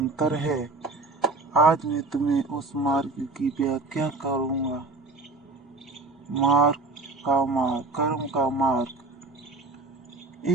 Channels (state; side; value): quieter; left; 3.4 dB